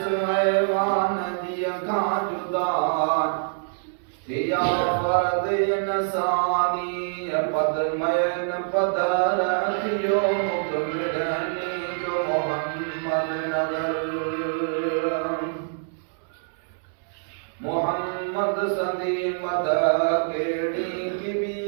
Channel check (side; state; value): left; silent; 62 dB below the other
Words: सहवान दिया का जुदा या फर्द इंसानी पद मैन पदर थियो मुकमिलनी जो मोहम्मद मगर मोहम्मद सदी मद केड़ी किबी